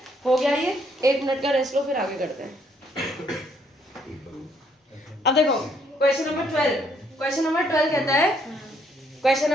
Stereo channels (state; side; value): normal; both; correlation 0.68